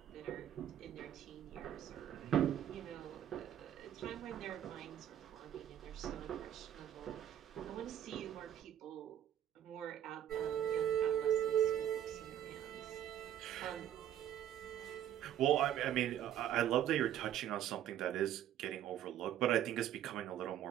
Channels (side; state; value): left; quieter; 10.9 dB